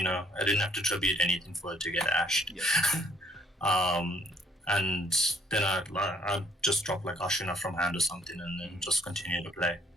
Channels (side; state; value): both; normal; correlation 0.64